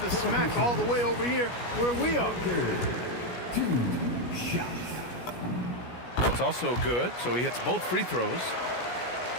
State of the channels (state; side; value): late; right; 17 ms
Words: the smack all the way over here where we are. 2 shots. That's also good, so he hits both free throws.